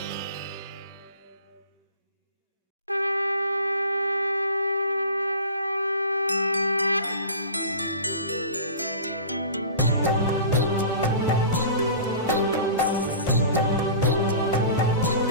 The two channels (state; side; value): inverted; both; correlation -0.38